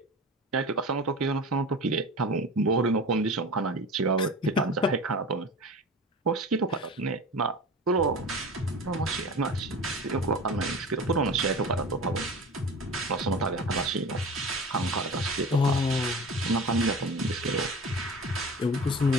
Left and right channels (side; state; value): both; normal; correlation 0.34